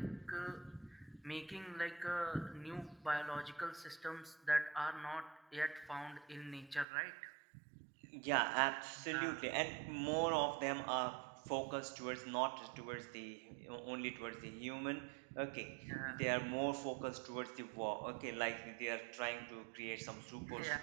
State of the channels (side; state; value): left; drops out; at 6.9 s